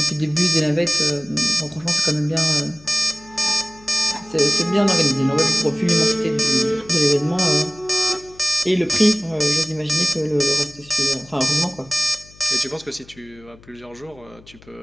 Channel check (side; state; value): left; noise; hum, 24 dB below the sound